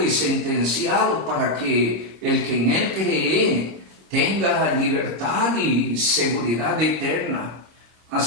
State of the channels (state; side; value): late; left; 26 ms